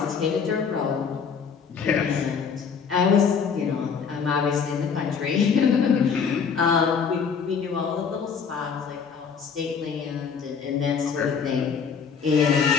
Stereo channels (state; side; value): quieter; right; 6.3 dB